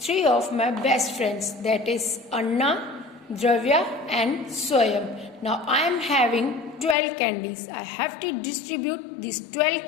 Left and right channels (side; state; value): right; drops out; at 7.0 s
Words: of my best friends, that is Anna, Dravya and Swayam. Now I am having 12 candies. I have to distribute these 12